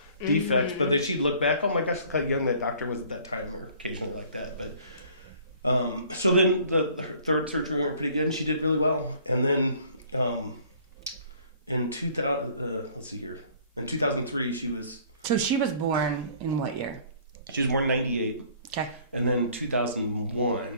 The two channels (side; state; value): both; inverted; correlation -0.55